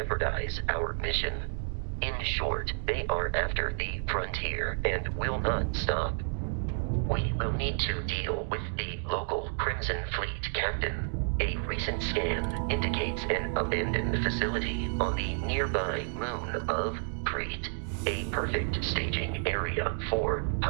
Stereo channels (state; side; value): silent; left; 57 dB below the other